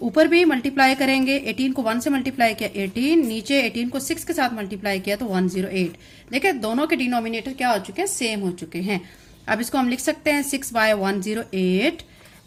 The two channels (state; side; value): identical; both; correlation 1.00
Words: ऊपर भी मल्टीप्लाई करेंगे। 18 को 1 से मल्टीप्लाई किया 18, नीचे 18 को 6 के साथ मल्टीप्लाई किया तो 108। देखिए दोनों के डिनोमिनेटर क्या हो चुके हैं, सेम हो चुके हैं। अब इसको हम लिख सकते हैं 6/108